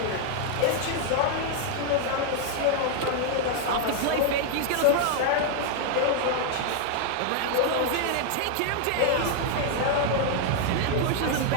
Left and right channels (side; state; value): both; different; correlation 0.00